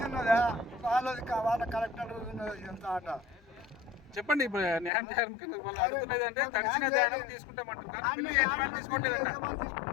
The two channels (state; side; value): drops out; right; at 4.9 s